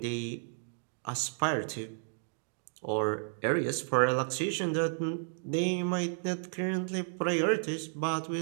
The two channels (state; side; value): silent; left; digital silence